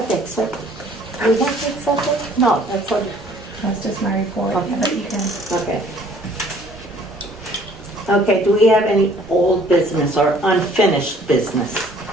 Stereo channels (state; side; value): normal; both; correlation 0.56